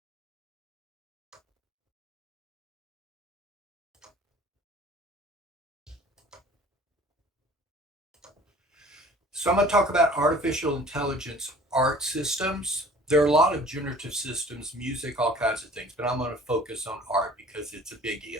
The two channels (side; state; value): both; normal; correlation 0.49